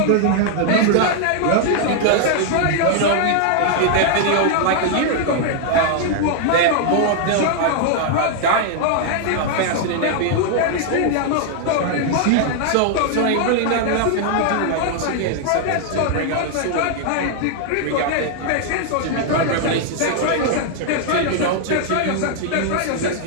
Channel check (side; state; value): both; different; correlation 0.00